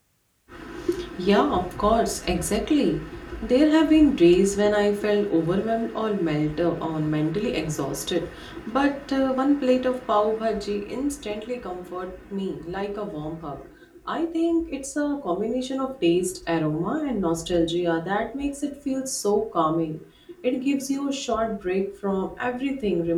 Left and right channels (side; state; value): both; identical; correlation 1.00